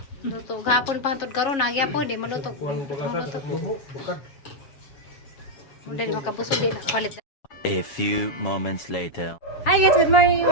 Luto, gahapon pa hantod karon nagyapon, di maluto. Mula di makabusog din, palit. A few moments later. Hi guys, good morning,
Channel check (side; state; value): right; late; 7.1 ms